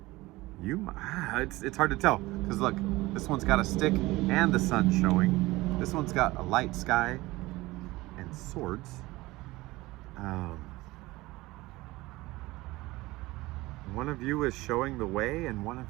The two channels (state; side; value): quieter; left; 19.9 dB